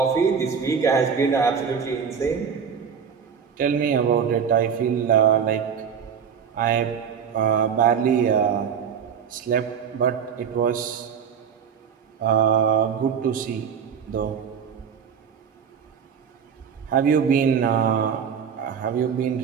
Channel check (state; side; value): quieter; left; 7.1 dB